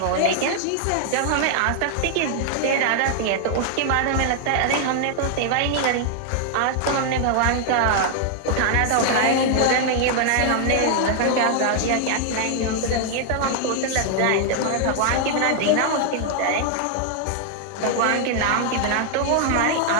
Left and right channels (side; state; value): both; different; correlation 0.00